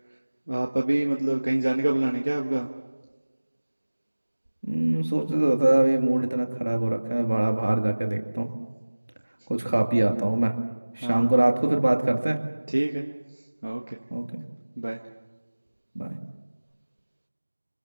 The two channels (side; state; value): both; inverted; correlation -1.00